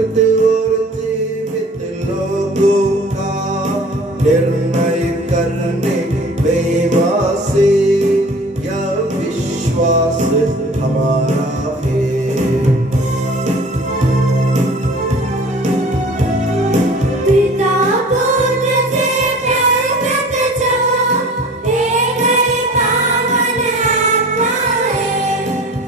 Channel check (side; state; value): both; normal; correlation 0.44